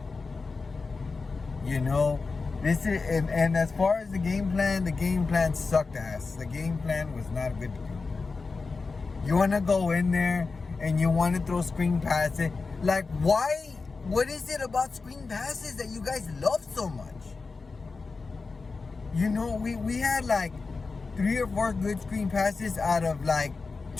You know, this is, and as far as the game plan sucked ass. The game plan was not good to do. You want to go in there and you want to throw screen passes. Like, why? What is it about screen passes that you guys love so much? You know, we had like 3 or 4 good screen passes out of like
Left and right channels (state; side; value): quieter; right; 4.2 dB